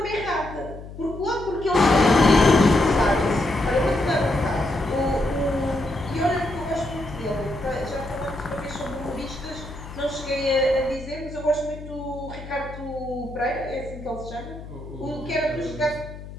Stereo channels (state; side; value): noise; left; hum, 13 dB below the sound